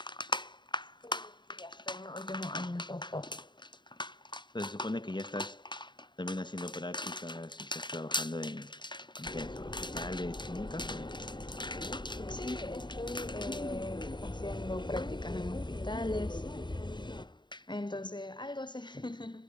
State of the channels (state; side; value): late; right; 0.22 ms